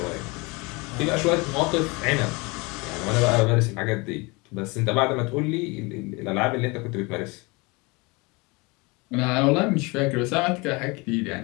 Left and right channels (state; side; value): quieter; right; 26.6 dB